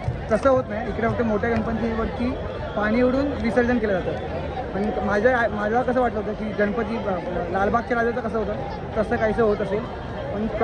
तसं होत नाही. इकडे फक्त मोठ्या गणपतीवरती पाणी उडून विसर्जन केलं जातं. पण माझ्या कसं वाटलं होतं की गणपती लालबागच्या राजाचं कसं होतं तसं काहीसं होत असेल, पण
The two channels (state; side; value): identical; both; correlation 1.00